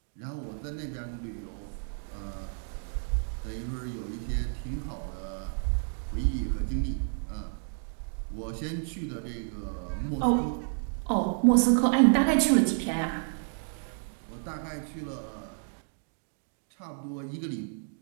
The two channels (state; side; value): silent; left; digital silence